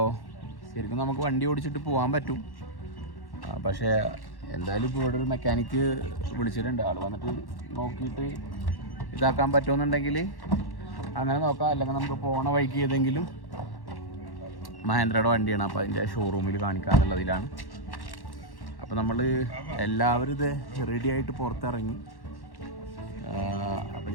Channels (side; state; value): right; late; 1.1 ms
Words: ശരിക്കും നമുക്ക് വണ്ടി ഓടിച്ചിട്ട് പോകാൻ പറ്റും. പക്ഷേ എന്തായാലും ഇപ്പോൾ ഇവിടെ ഒരു മെക്കാനിക്ക് വിളിച്ചിട്ടുണ്ട്. ആൾ വന്നിട്ട് നോക്കിയിട്ട് ഇതാക്കാൻ പറ്റുമെന്നുണ്ടെങ്കിൽ അങ്ങനെ നോക്കാം, അല്ലെങ്കിൽ നമുക്ക് പോണ വഴിക്ക് ഏതെങ്കിലും മഹേന്ദ്രയുടെ വണ്ടിയാണ്, അപ്പോൾ അതിൻ്റെ ഷോറൂമിൽ കാണിക്കാമെന്നുള്ളതിലാണ്. അപ്പോൾ നമ്മൾ എല്ലാവരും ഇത് റെഡി ആയിട്ട് പുറത്തിറങ്ങി. അപ്പോൾ